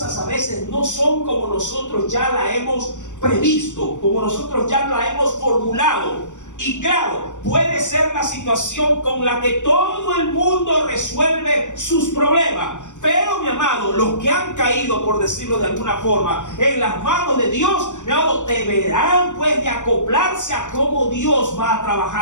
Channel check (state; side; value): late; right; 0.85 ms